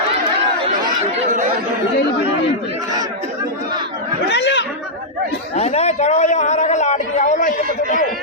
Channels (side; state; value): both; normal; correlation -0.08